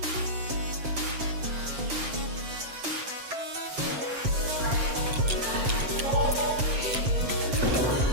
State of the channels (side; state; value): left; late; 7.7 ms